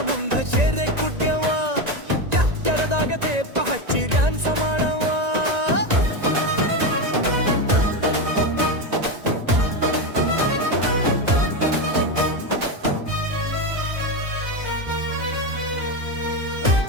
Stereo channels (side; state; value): left; late; 1.9 ms